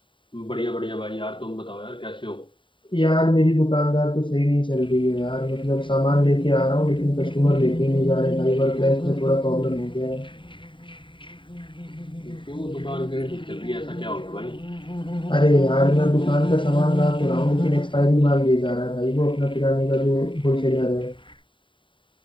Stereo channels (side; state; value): right; late; 0.24 ms